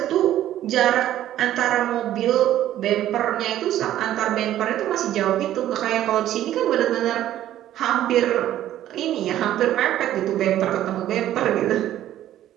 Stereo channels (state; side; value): quieter; left; 12.6 dB